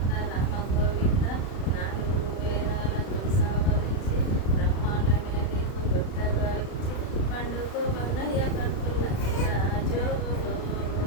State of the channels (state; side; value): late; right; 35 ms